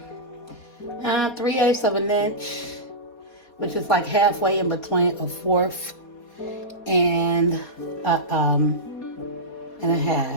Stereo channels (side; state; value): right; late; 4.2 ms